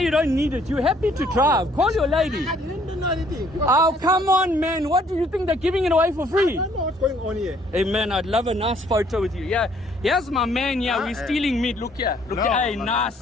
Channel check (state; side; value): normal; both; correlation 0.63